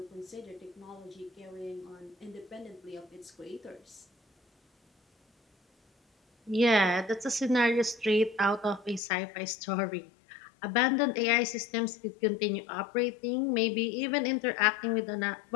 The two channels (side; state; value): right; drops out; at 9.0 s